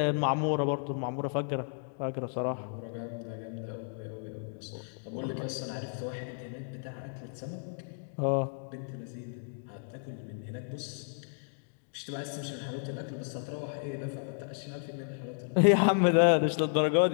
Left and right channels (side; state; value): right; silent; digital silence